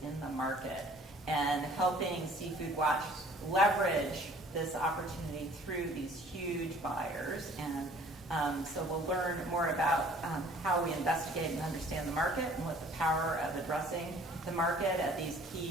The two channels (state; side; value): normal; both; correlation 0.53